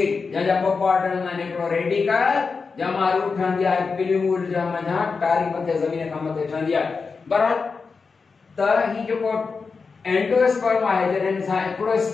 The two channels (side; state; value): right; quieter; 4.8 dB